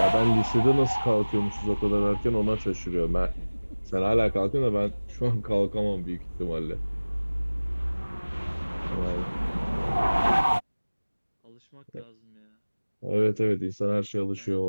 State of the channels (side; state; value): both; inverted; correlation -1.00